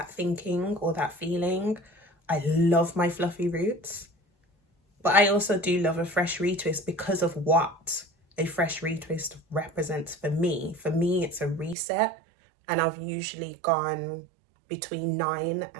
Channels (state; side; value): drops out; left; at 11.8 s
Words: thinking or that feeling. I love my fluffy roots, but I also do love a fresh retwist because of what a fresh retwist represents for me. For me, it's a reset, and I've usually gone between 9